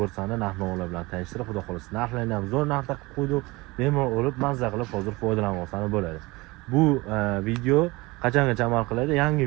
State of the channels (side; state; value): left; quieter; 22.8 dB